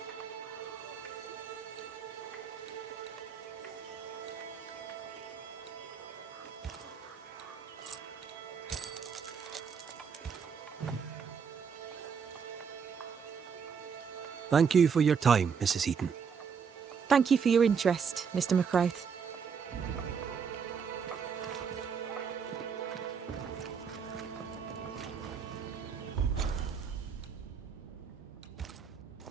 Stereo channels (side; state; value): left; quieter; 6.4 dB